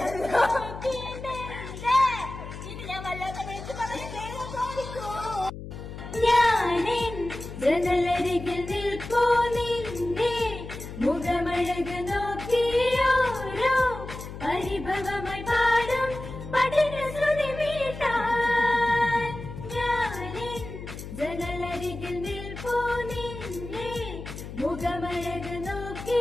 ഇത് ഞാൻ വല്ലാത്ത വിളിച്ചു ഞാനിൻ ജനലരികൾ നിൽപ്പൂ നിന്നെ മുഖമഴക് നോക്കിയോരോ പരിഭവമായി പാടും പഠന ശ്രുതി മീട്ടാൻ. ഞാനിൻ ജനലരികിൽ നിൽപ്പൂ നിന്നെ മുഖമഴക്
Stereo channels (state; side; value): noise; left; hum, 11 dB below the sound